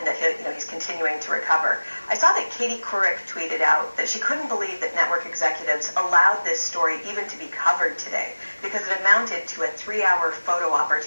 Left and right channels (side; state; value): both; inverted; correlation -1.00